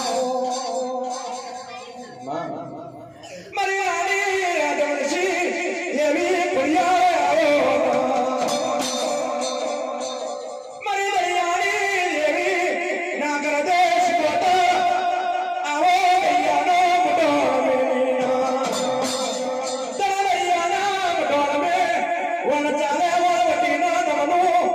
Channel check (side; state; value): both; identical; correlation 1.00